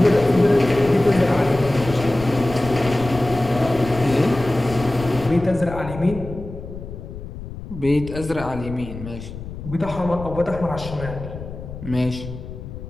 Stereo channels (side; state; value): left; noise; rumble, 11 dB below the sound